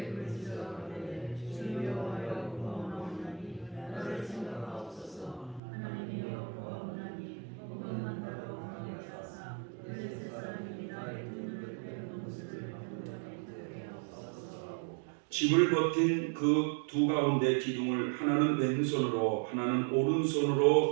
집을 버틴 그 두 가운데 기둥을 하나는 왼손으로 하나는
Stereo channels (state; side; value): drops out; left; at 5.6 s